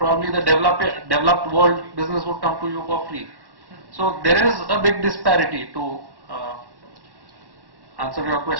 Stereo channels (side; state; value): left; late; 1.1 ms